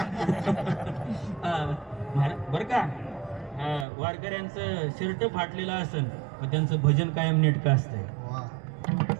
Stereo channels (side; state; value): left; drops out; at 3.9 s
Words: बरं का, वारकऱ्यांचं शर्ट फाटलेलं असन पण त्यांचं भजन कायम नेटकं असतंय. वा.